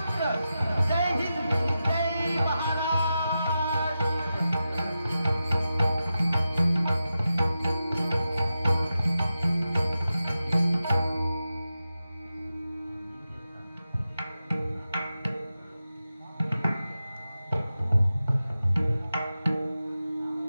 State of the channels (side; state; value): both; inverted; correlation -0.91